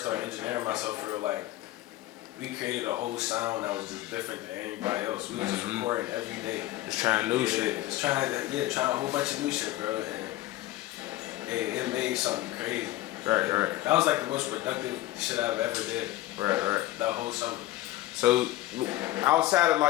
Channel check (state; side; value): quieter; right; 16.1 dB